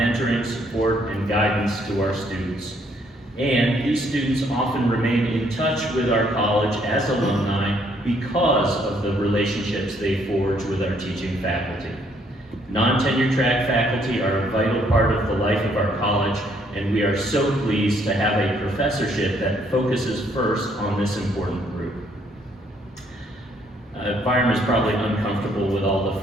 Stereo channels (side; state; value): both; normal; correlation 0.68